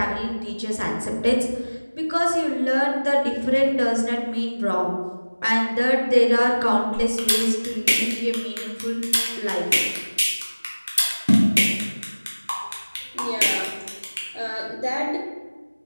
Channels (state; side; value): inverted; both; correlation -1.00